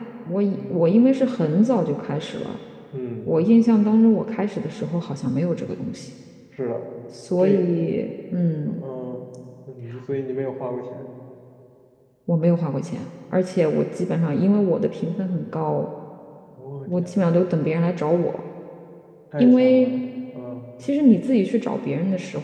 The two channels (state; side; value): identical; both; correlation 1.00